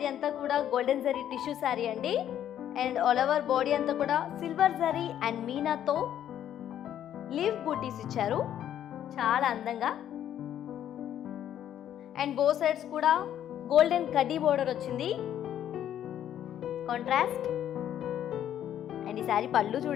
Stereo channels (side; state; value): right; quieter; 10.7 dB